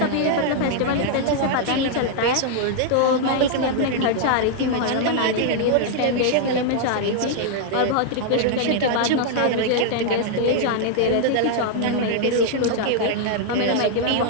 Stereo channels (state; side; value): different; both; correlation -0.01